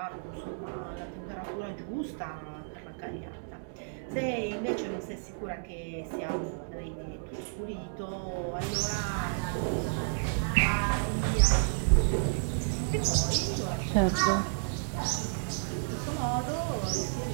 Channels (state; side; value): silent; left; digital silence